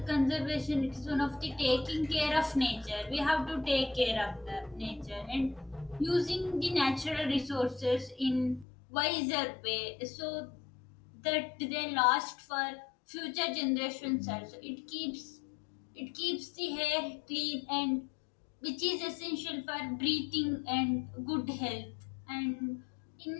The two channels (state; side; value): drops out; right; at 8.7 s